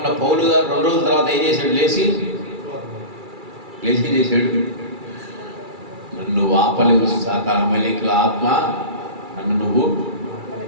పౌలు గారు 2 రోజుల తర్వాత ఏం చేశాడు? లేచి చేశాడు, నన్ను ఆపలేవు అమాలేకీయుల ఆత్మ, నన్ను నువ్వు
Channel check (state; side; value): late; left; 2.3 ms